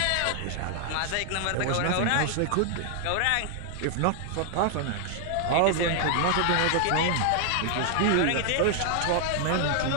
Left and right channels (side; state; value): both; different; correlation 0.00